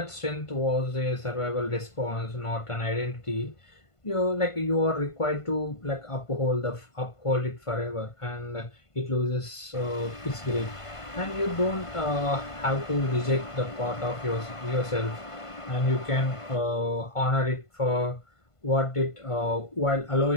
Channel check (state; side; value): late; right; 1.5 ms